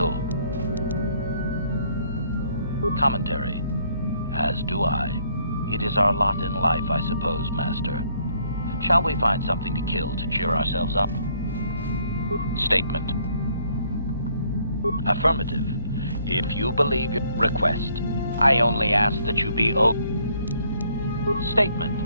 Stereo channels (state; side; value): inverted; both; correlation -0.66